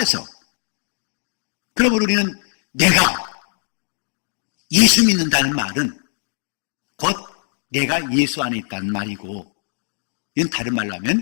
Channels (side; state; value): right; silent; 64 dB below the other